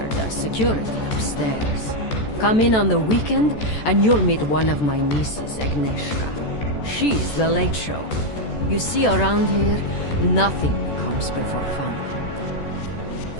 does security upstairs. Come in on the weekend, and you'll meet one of my nieces, Agnieszka. She's the late show. You see, around here, nothing comes before family.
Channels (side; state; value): right; late; 14 ms